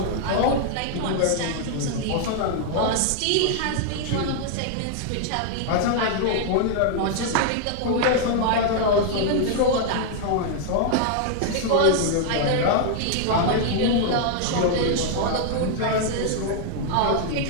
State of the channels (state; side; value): different; both; correlation 0.00